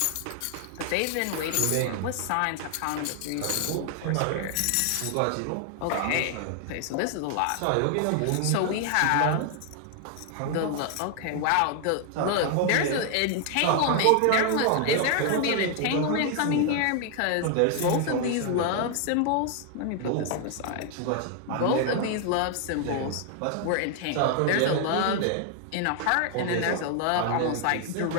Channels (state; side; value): different; both; correlation 0.00